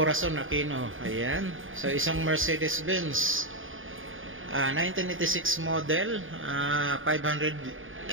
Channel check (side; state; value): left; late; 0.58 ms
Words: Aquino. Ayan. So isang Mercedes-Benz 1986 model 500